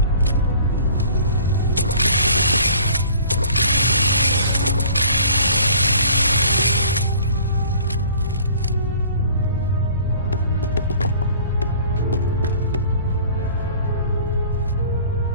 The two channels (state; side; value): inverted; both; correlation -0.50